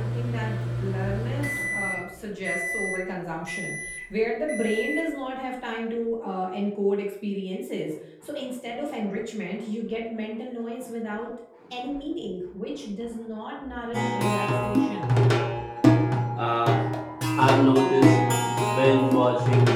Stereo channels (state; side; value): identical; both; correlation 1.00